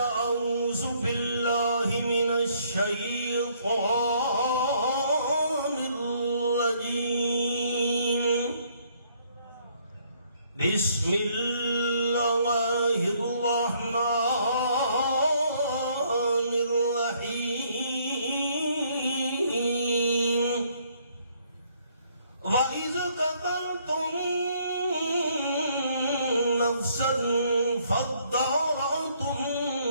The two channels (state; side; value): inverted; both; correlation -0.66